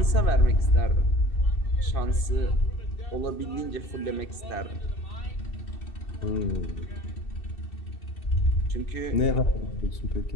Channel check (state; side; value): late; right; 2.6 ms